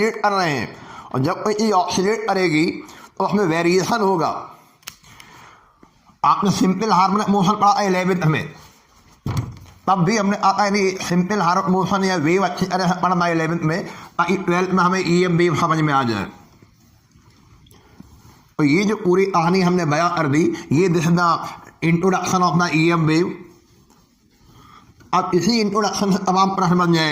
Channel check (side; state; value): both; identical; correlation 1.00